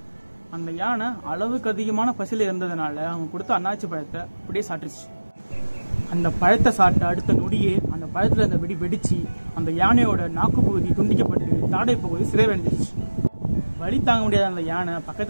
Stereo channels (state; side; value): inverted; both; correlation -1.00